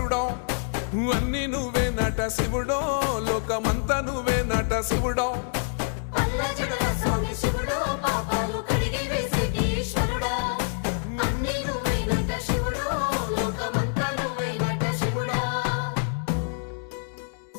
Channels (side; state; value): right; silent; digital silence